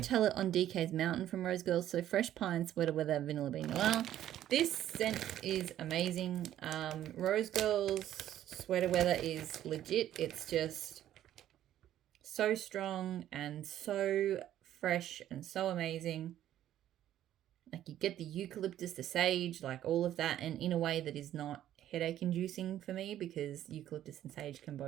It on DK's Mountain from Rose Girls. So fresh pine, sweater weather, vanilla bean oil. This scent is amazing. Rose Girls sweater weather is legit. It's just so strong and so fresh and so amazing. Like, you get the eucalyptus, the sage, like all of that, and in a way that is not headache inducing for me, because eucalyptus and sage can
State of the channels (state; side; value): quieter; left; 12.0 dB